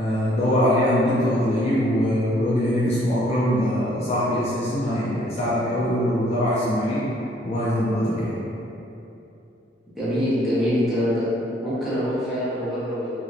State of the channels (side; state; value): both; normal; correlation 0.62